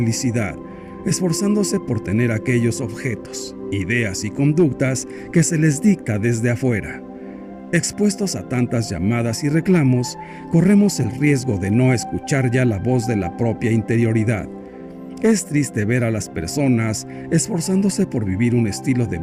esforzándose por tener aquellos objetos, ideas y conductas que se les dicta desde afuera. Expuestos a tantas llamadas y reclamos, corremos el riesgo de no escuchar ya la voz de la propia interioridad. Es triste ver a las personas esforzándose por vivir un estilo de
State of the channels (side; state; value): both; identical; correlation 1.00